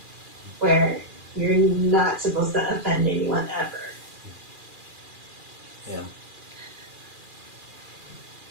where you're not supposed to offend anyone ever. Yeah.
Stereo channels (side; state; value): left; late; 2.4 ms